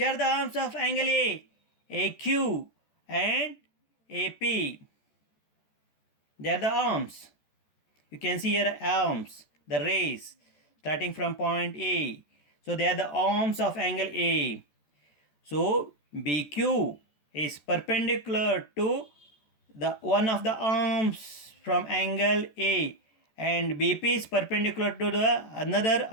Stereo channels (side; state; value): right; late; 14 ms